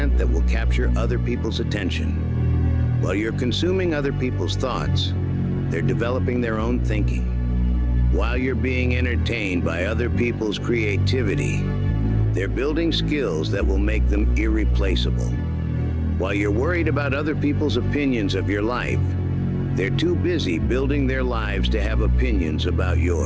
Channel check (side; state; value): both; identical; correlation 1.00